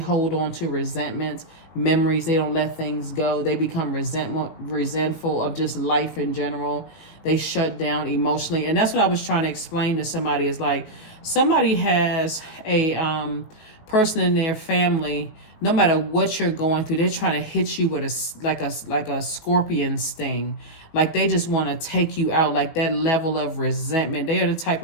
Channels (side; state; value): right; late; 19 ms